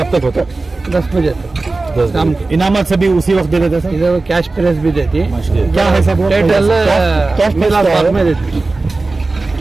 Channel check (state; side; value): quieter; left; 3.4 dB